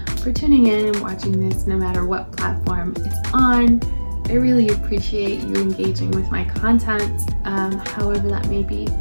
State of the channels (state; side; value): inverted; both; correlation -1.00